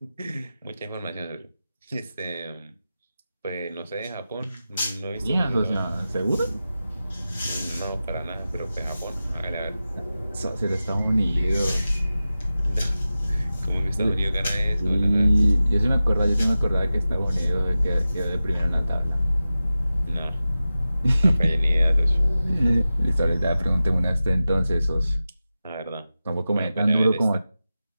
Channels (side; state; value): both; inverted; correlation -0.94